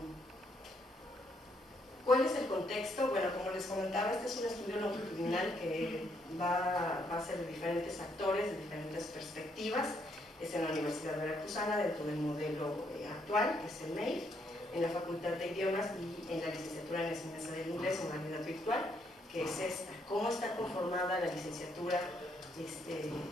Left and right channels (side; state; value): both; normal; correlation 0.73